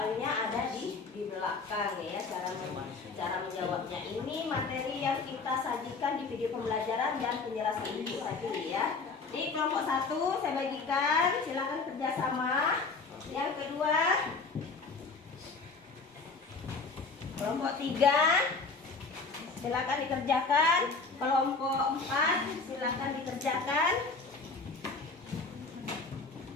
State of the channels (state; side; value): quieter; right; 4.3 dB